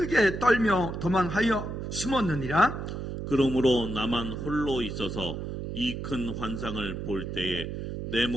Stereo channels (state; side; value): noise; right; hum, 6 dB below the sound